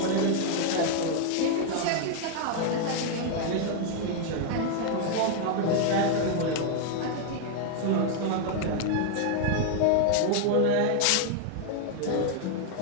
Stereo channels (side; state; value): both; different; correlation 0.00